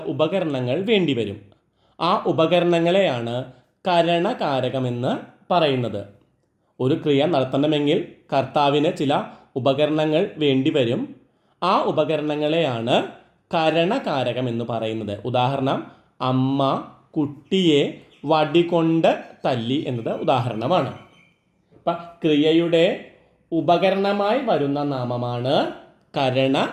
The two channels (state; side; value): identical; both; correlation 1.00